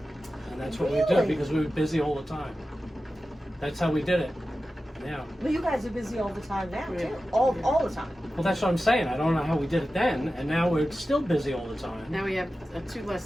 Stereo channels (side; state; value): both; normal; correlation 0.94